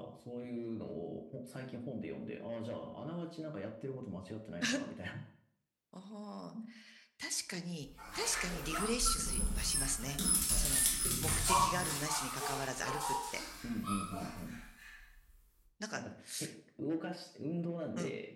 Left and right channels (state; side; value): identical; both; correlation 1.00